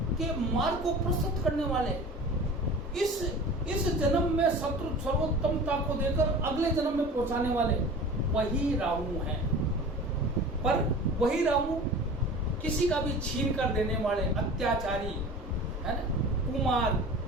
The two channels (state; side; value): normal; both; correlation 0.38